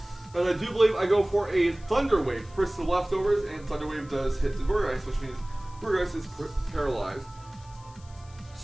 And I do believe I go for a Thunder Wave. First the leftovers, and Thunder Wave does hit the Gourgeist, which means Gourgeist is paralyzed.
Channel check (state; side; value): noise; left; hiss, 25 dB below the sound